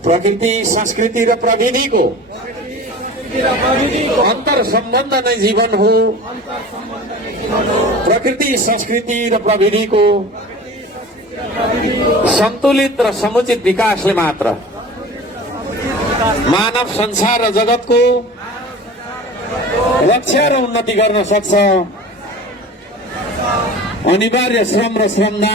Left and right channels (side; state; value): both; normal; correlation 0.38